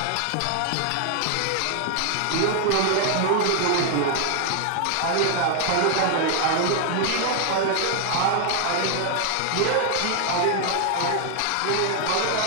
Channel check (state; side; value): different; both; correlation 0.00